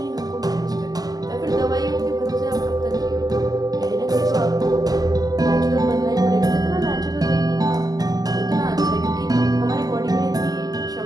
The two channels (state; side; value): late; left; 0.18 ms